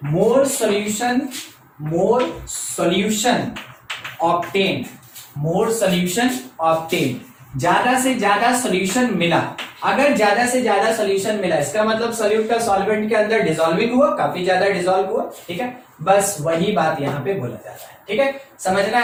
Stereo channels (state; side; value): identical; both; correlation 1.00